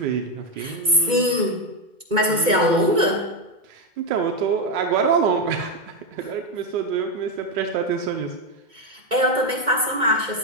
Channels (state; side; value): late; left; 2.2 ms